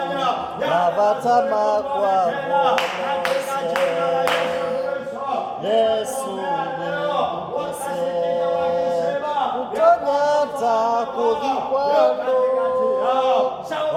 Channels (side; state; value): both; identical; correlation 1.00